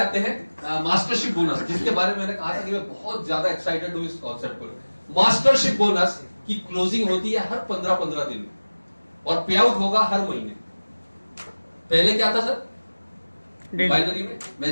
हैं मास्टरशिप बोनस, जिसके बारे में मैंने कहा था कि मैं बहुत ज्यादा एक्साइटेड हूँ इस कॉन्सेप्ट को। मास्टरशिप बोनस की क्लोजिंग होती है हर 15-15 दिन में और पे आउट होगा हर महीने। पहले क्या था सर? बाइनरी में,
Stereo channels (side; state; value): both; inverted; correlation -1.00